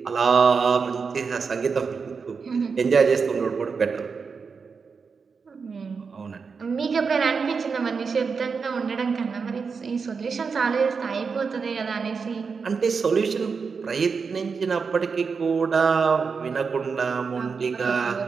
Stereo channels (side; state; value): left; quieter; 5.3 dB